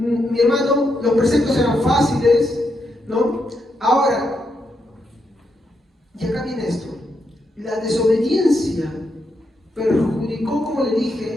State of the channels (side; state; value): both; normal; correlation 0.81